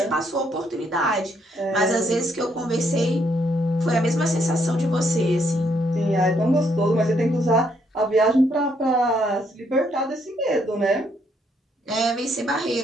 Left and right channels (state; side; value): normal; both; correlation 0.72